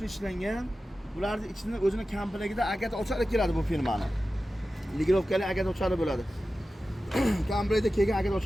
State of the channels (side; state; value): both; normal; correlation 0.94